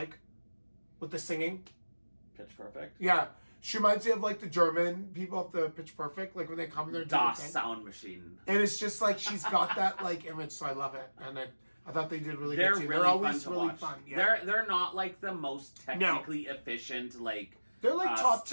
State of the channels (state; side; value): inverted; both; correlation -1.00